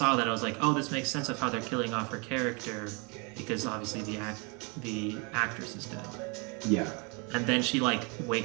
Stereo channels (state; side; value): quieter; left; 32.2 dB